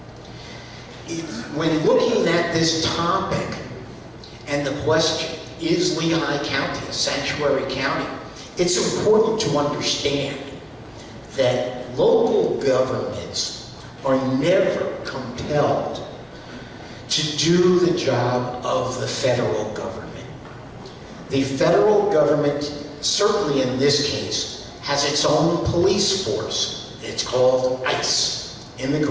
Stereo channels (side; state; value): both; identical; correlation 1.00